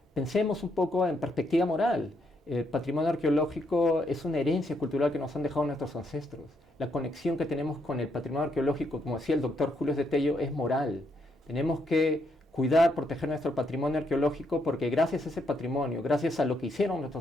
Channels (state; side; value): normal; both; correlation 0.76